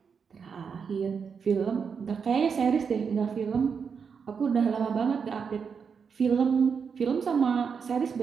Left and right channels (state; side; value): quieter; left; 6.2 dB